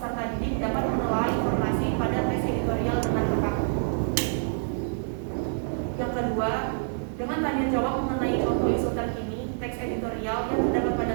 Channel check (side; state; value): left; silent; 60 dB below the other